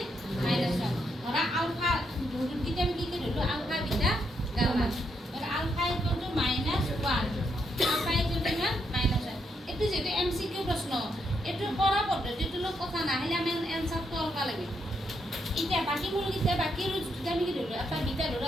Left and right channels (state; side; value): normal; both; correlation 0.78